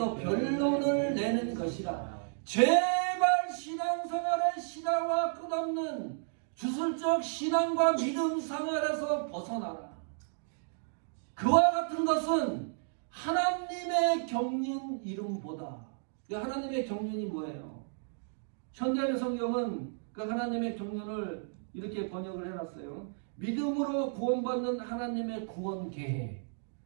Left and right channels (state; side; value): silent; left; digital silence